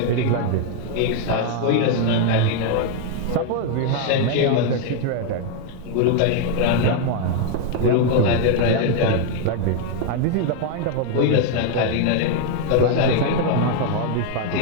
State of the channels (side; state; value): both; different; correlation 0.00